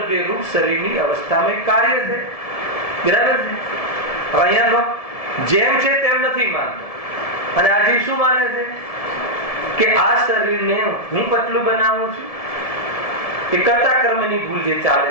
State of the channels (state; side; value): late; right; 1.7 ms